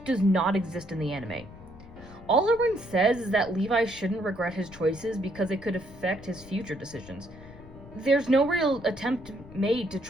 does not exist in the anime. All Erwin says is that Levi shouldn't regret his choices because it could affect his future decisions. There's no real attempt made to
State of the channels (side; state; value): left; noise; rumble, 18 dB below the sound